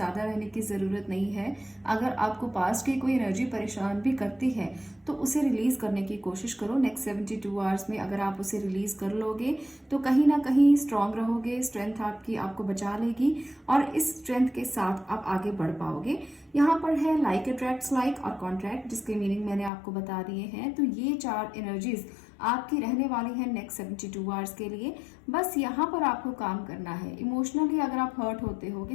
रहने की जरूरत नहीं है। अगर आपको पास्ट की कोई एनर्जी परेशान भी करती है तो उसे रिलीज करने की कोशिश करो। नेक्स्ट 72 आवर्स में अगर आप उसे रिलीज कर लोगे तो कहीं ना कहीं स्ट्रांग रहोगे, स्ट्रेंथ आपकी आपको बचा लेगी, और इस स्ट्रेंथ के साथ आप आगे बढ़ पाओगे। यहाँ पर है लाइक अट्रैक्ट्स लाइक और कॉन्ट्रैक्ट, जिसके मीनिंग मैंने आपको बता दिए हैं। तो ये 4 एनर्जीज आपकी रहने वाली है नेक्स्ट 72 आवर्स के लिए। बस यहाँ पर आपको काम करना है। इमोशनली अगर आप हर्ट होते हो,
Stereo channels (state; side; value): drops out; right; at 19.7 s